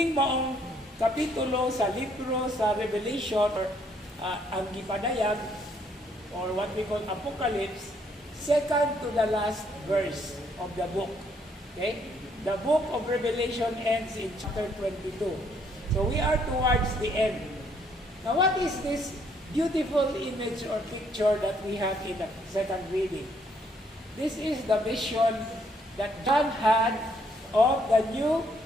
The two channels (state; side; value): normal; both; correlation 0.69